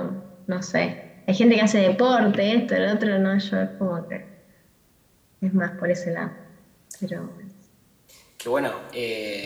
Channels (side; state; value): both; identical; correlation 1.00